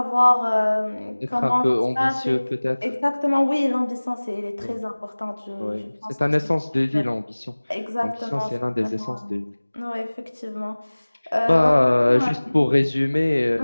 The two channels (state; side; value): inverted; both; correlation -1.00